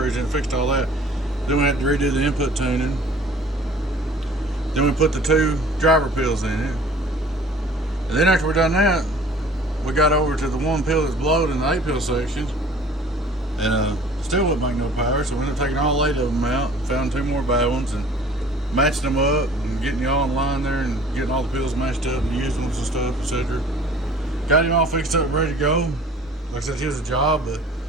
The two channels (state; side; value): normal; both; correlation 0.49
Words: in and fixed all that. Then we had to redo the input tuning. Then we put the 2 driver pills in it. And then after we done that, we got over to the 1 pill that's blowed in the 8 pill section. And still wouldn't make no power, so we ended up taking all 8 of them out and found 2 more bad ones and matching them up and getting y'all in line there and getting all the pills matched up and using them and stuff, etc. Got him all fixed up, ready to go. Like I said, he was a job, but